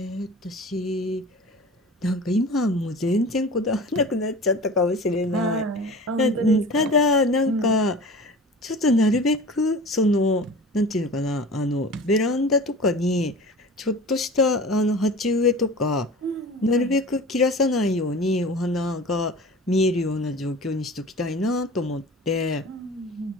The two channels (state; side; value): normal; both; correlation 0.38